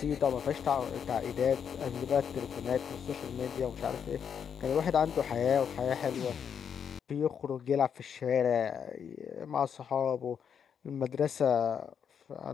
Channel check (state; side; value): quieter; right; 7.6 dB